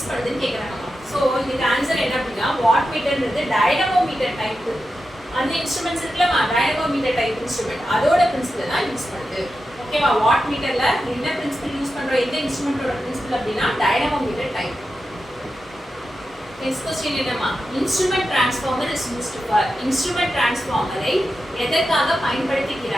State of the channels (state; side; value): normal; both; correlation 0.90